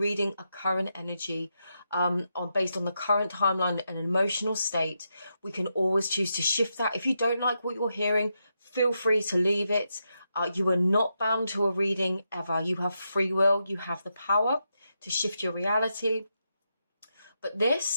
a current energy based on the current timeline and emotional state. We can always choose to shift that. If you don't like what you're hearing, feel free to leave it. You are not bound to a reading ever. You have free will. You have the power to shift your reality. But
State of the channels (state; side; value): inverted; both; correlation -0.84